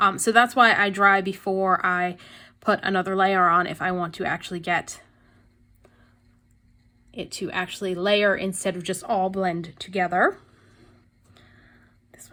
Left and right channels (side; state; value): both; identical; correlation 1.00